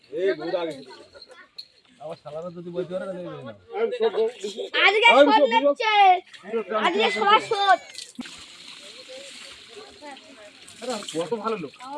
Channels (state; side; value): identical; both; correlation 1.00